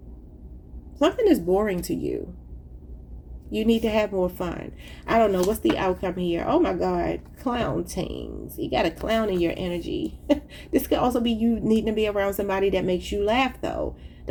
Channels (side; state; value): both; identical; correlation 1.00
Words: Something is boring to you. You need to have more fun. I don't know. What's the outcome here? Oh my God. Clown things. You got a clown in your energy. This could also be you needing to be around somebody that makes you laugh though.